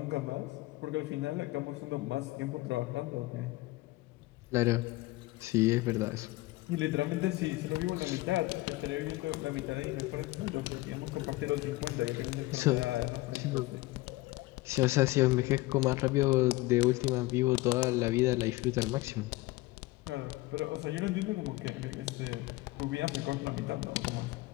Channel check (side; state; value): right; quieter; 20.0 dB